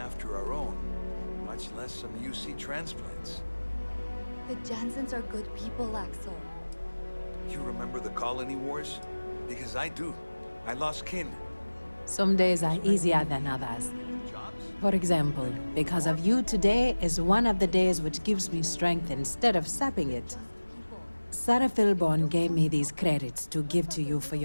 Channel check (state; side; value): inverted; both; correlation -1.00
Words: our own, much less some UC transplants. The Jansens are good people, Axel. You remember the colony wars? Because I do. I lost kin. Some days are easier than others. For example, because of you, today is one of the days which gives me strength instead of sapping it. Sarah Philborn gave me these credits to give to you for